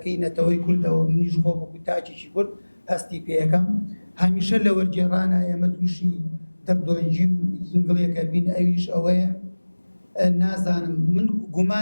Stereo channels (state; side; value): inverted; both; correlation -1.00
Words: نەتەوەی کوردەوە منیش خۆ بەکو تاجێکی کورد هەستی پێیەکەم هەمیشە لە وەرگێڕانە ئێمە تووشی دەردۆنجی و ئینگڵیەکە بین ئەویش ئەوەیە نازانم من